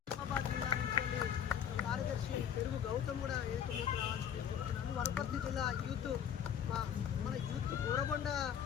జిల్లా నుంచి కార్యదర్శి పెరుగు గౌతమ్ కూడా ఏకమైకి రావాల్సింది కోరుతున్నాను. వనపర్తి జిల్లా యూత్ మన యూత్ గోరబండ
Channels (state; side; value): quieter; right; 8.8 dB